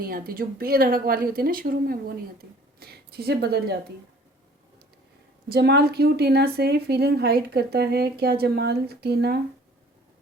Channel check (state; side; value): normal; both; correlation 0.53